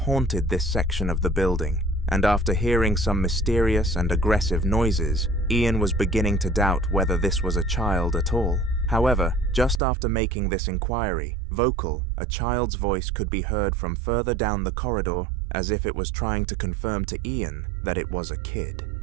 this section of the building, and after hearing some mysterious and aggressive noises, Ian was beginning to doubt whether this was a child at all. However, just after making this inquiry, vocal, a child's voice could be heard from further down the corridor, as if it was trying to confirm to Ian that it was a kid.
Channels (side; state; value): left; drops out; at 9.8 s